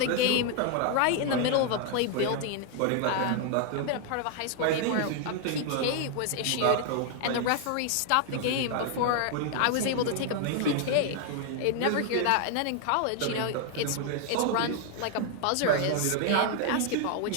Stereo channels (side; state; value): both; different; correlation 0.00